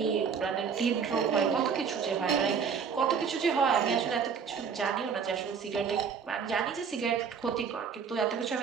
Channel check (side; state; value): left; quieter; 6.4 dB